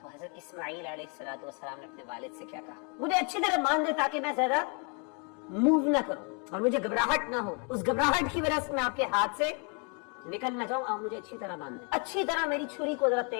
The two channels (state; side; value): quieter; right; 35.8 dB